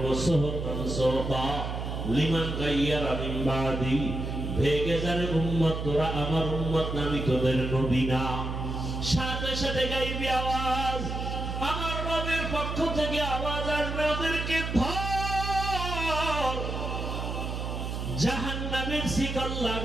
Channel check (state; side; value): noise; right; hum, 4 dB below the sound